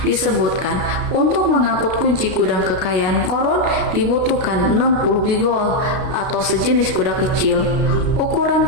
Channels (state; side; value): late; left; 33 ms